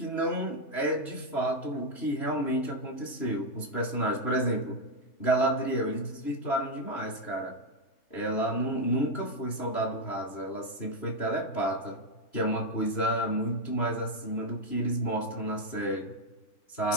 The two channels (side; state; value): right; late; 3.0 ms